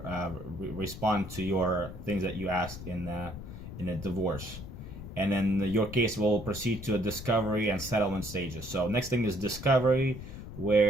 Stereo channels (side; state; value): left; noise; rumble, 11 dB below the sound